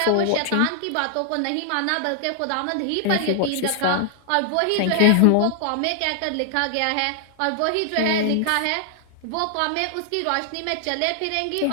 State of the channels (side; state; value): both; different; correlation 0.00